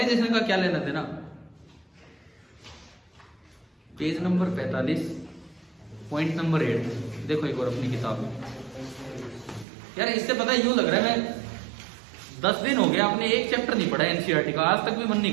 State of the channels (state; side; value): drops out; left; at 9.7 s